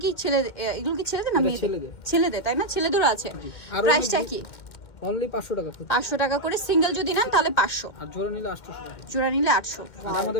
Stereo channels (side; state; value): right; late; 2.2 ms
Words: কি ছেলে, এগুলো কি ছেলেদের না মেয়েদের? ছেলেদের, তাই না? ছেলেদেরও আছে। প্রাইসটা কি? অনলি 500 টাকা। 500 টাকা করে সিঙ্গেল যদি নেন তাহলে 500, আর জোড়া নিলে 800 টাকা। জোড়া নিলে 800। আর